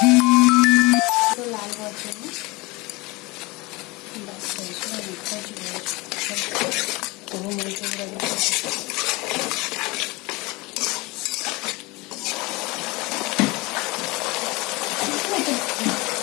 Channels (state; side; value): quieter; right; 23.8 dB